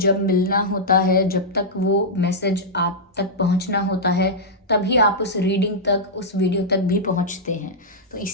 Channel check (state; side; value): normal; both; correlation -0.09